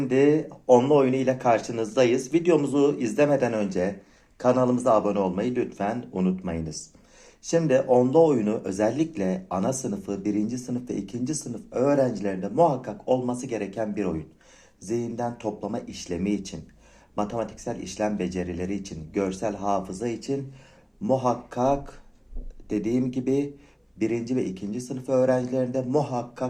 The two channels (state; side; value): identical; both; correlation 1.00